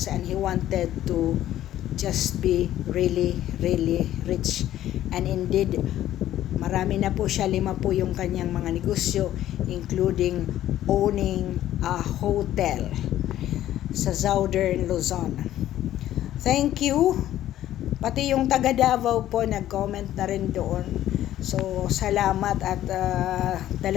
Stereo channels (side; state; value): right; quieter; 12.8 dB